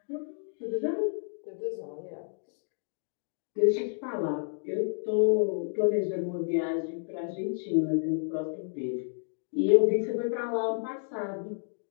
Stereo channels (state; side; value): silent; right; digital silence